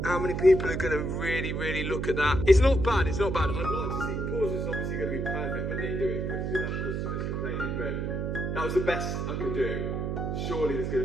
How many people are going to really look at that? It's not bad, it's not bad. I'd like to see, Porsche is obviously going to be perfect when they do it because you'll have customers complaining, but that was the best I could do. Surely there's going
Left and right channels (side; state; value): right; noise; hum, 1 dB below the sound